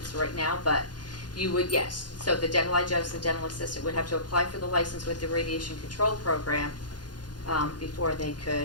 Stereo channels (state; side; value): late; right; 0.70 ms